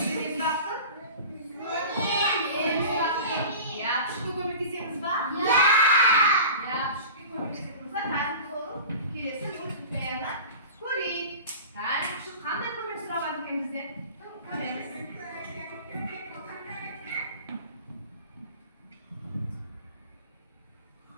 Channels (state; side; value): inverted; both; correlation -0.37